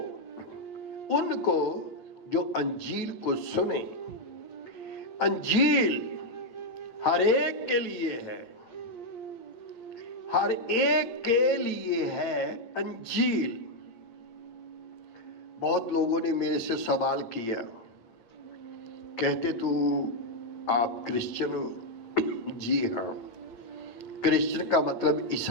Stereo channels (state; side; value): late; right; 8.9 ms